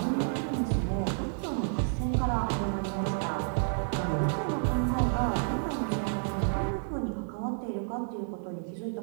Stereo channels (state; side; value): silent; left; digital silence